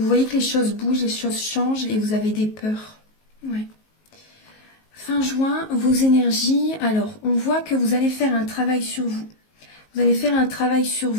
voyez que les choses bougent, les choses changent et vous avez des peurs. Ouais. Fin juin, vos énergies. Alors, on voit que vous allez faire un travail sur vous. Vous allez faire un travail sur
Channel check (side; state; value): right; late; 19 ms